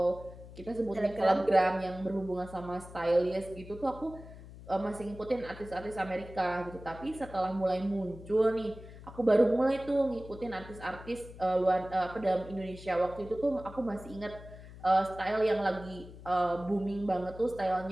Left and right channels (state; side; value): noise; left; hum, 16 dB below the sound